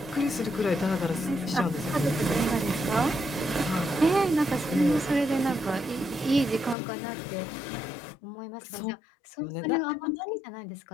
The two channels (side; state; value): right; drops out; at 6.8 s